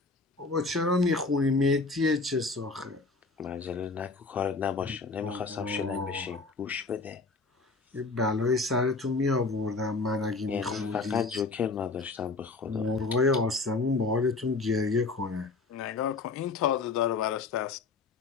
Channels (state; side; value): quieter; right; 3.9 dB